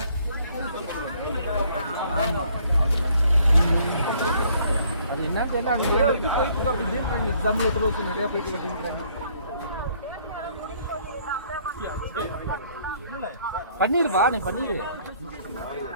ஆமா, அது என்ன தெரியல. அவங்க இது போயிட்டு இருக்கு அப்படின்றாங்க. எக்ஸாம்பிள் ஒருத்தர் நிறைய போயிட்டு அப்படின்றாங்க. பண்ணிருவா, நீ பண்ணிடு.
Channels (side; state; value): both; inverted; correlation -0.63